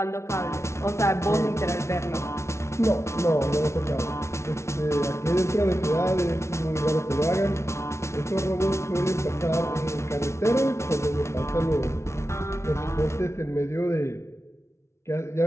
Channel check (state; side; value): late; right; 0.13 ms